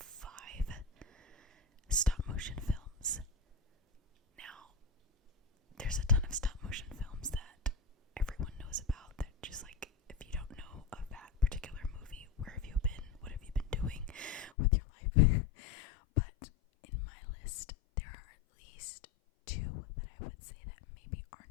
stop motion films. Now, there's a ton of stop motion films that everyone knows about that just like, if you don't know of that particular movie, where have you been? What have you been doing with your life? But in my list, there are at least 2 that I would say that maybe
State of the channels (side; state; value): right; drops out; at 14.5 s